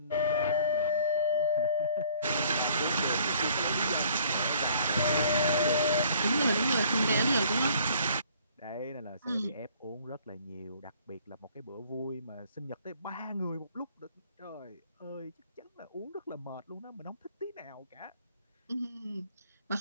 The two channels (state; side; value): inverted; both; correlation -0.57